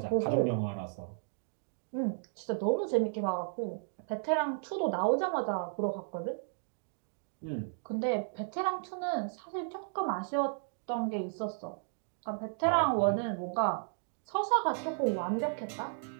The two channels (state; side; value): silent; left; digital silence